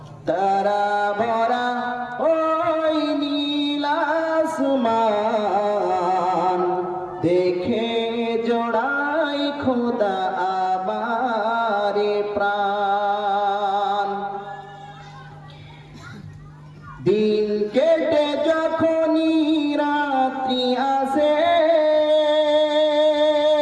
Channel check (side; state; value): both; identical; correlation 1.00